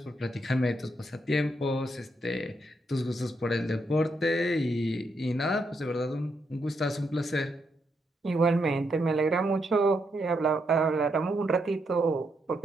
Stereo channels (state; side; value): normal; both; correlation 0.79